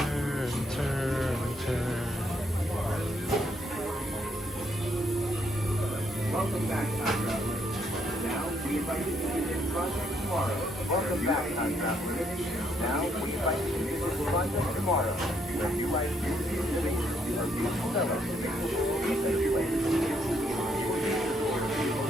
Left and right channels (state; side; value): normal; both; correlation 0.72